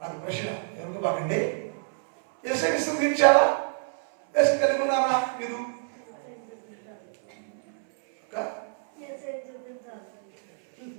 ప్రశ్న, ఎవరికి బాగండి? యేసుని విసర్జించారా? యేసు కలిగి ఉన్నారా మీరు?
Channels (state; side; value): silent; left; 60 dB below the other